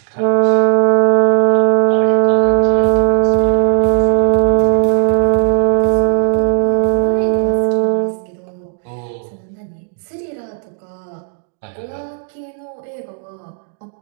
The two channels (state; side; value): silent; left; digital silence